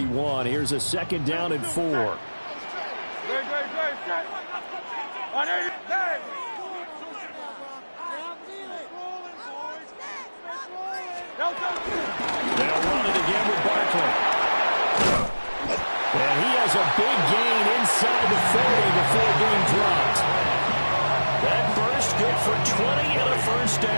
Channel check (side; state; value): both; inverted; correlation -1.00